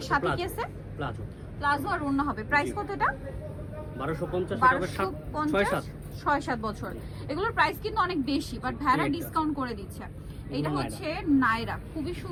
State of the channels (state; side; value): identical; both; correlation 1.00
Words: সাথে কি আছে? প্লাজো আর ওড়না হবে। প্রাইস কত এটা? 1250। 6-7 বছর। এগুলোর প্রাইস কিন্তু অনেক বেশি, বাট ভাড়া ডিসকাউন্ট করে দিচ্ছে। এটা হচ্ছে নায়রা, খুবই